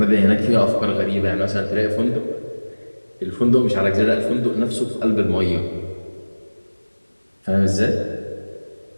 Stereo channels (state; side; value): inverted; both; correlation -1.00